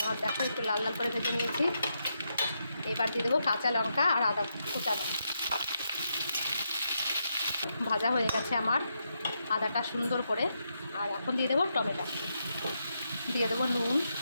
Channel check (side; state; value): both; inverted; correlation -0.82